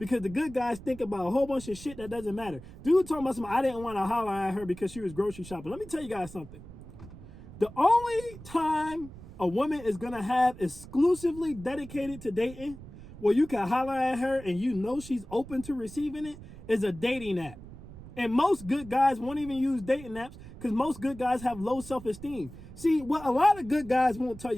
the good guys think about a whole bunch of shit that doesn't matter. Dude talking about something, I didn't want to holler at her because she was grocery shopping. Let me tell you guys something. The only time a woman is going to have exclusively dedicated to dating, where you can holler at her and you know she's open to receiving it, is a dating app. And most good guys won't even use dating apps because most good guys have low self-esteem. See, what a lot of good guys won't tell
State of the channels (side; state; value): right; noise; rumble, 16 dB below the sound